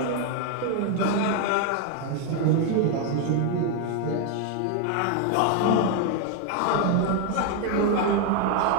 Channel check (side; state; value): both; different; correlation 0.01